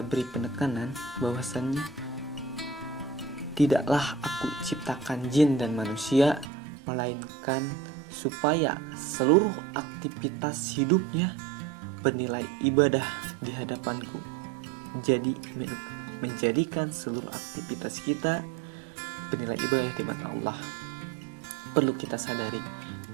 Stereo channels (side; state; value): left; drops out; at 6.5 s